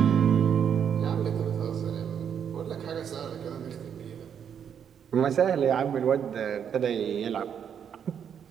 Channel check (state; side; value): quieter; left; 8.1 dB